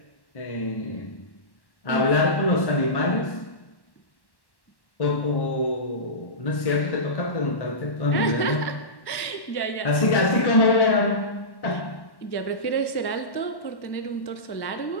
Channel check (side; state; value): right; late; 1.1 ms